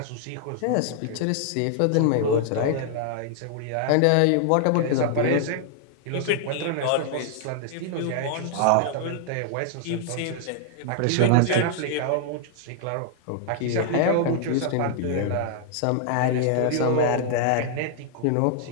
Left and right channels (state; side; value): different; both; correlation 0.00